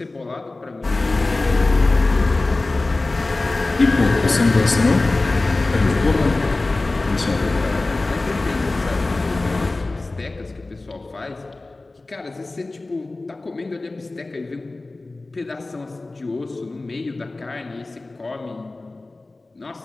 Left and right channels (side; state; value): right; quieter; 3.2 dB